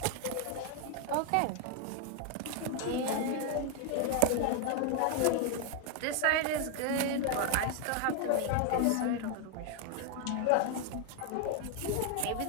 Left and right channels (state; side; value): different; both; correlation 0.00